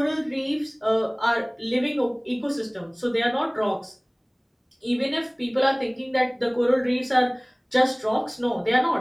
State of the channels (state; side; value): identical; both; correlation 1.00